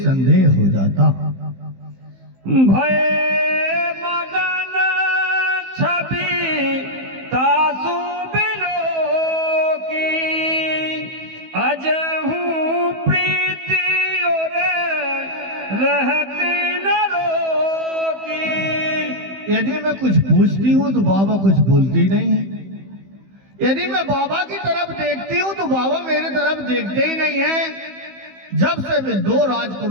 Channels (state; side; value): late; left; 15 ms